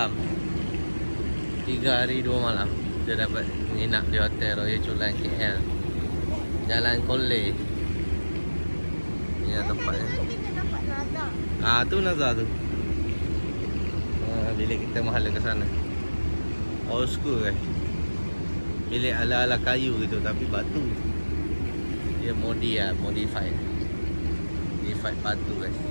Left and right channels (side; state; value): both; inverted; correlation -1.00